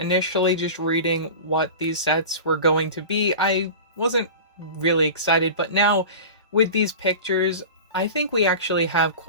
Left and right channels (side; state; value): both; inverted; correlation -0.33